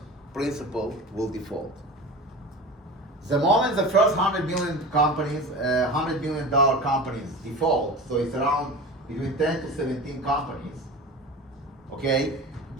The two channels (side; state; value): both; normal; correlation 0.33